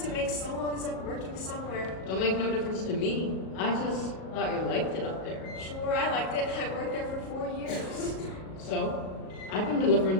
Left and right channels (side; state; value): right; late; 37 ms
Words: it makes so long as I'm working somewhere. Don't make no difference to me. I just thought you liked it up there. Sure, I liked it. I worked there for 4 years. So, I've been